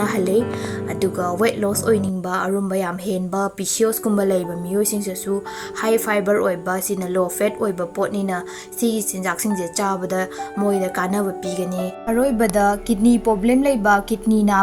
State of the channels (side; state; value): both; identical; correlation 1.00